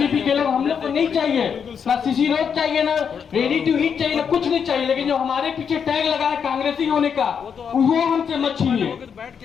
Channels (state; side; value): quieter; right; 7.0 dB